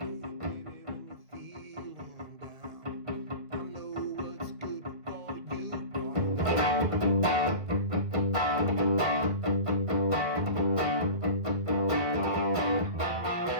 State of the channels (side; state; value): left; late; 1.9 ms